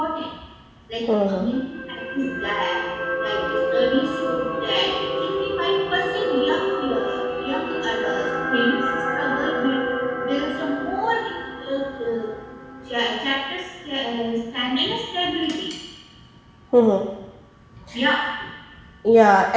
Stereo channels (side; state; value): both; identical; correlation 1.00